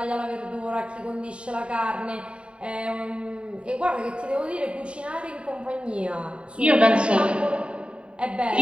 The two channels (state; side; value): late; left; 0.057 ms